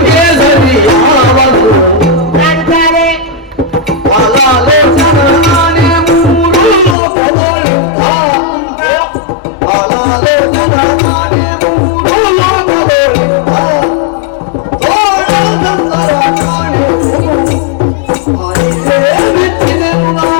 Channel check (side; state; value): right; drops out; at 7.0 s